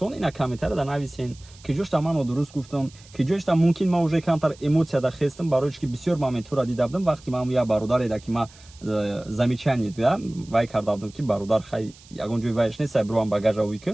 ина комментария да нависен ки ҷошта ман нодуруст гуфтам ки ҷошта мумкин ман уже камтар эмоция да хестам барои ки бисёр моментура дида будам вақте ман як бародаре да ки ман замечание да вай карда будам ки бародар хай ягон ҷои вайш нест бирувам багажа уи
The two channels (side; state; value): right; noise; hiss, 24 dB below the sound